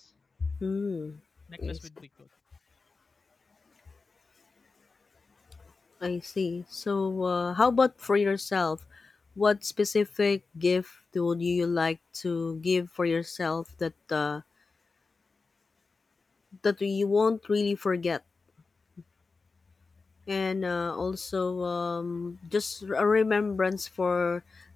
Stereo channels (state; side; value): quieter; right; 4.2 dB